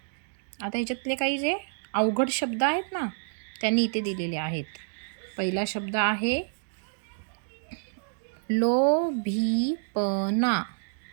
ह्याच्यातले काही जे अवघड शब्द आहेत ना, त्यांनी इथे दिलेले आहेत. पहिला शब्द आहे लोभीपणा.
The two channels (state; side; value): silent; left; digital silence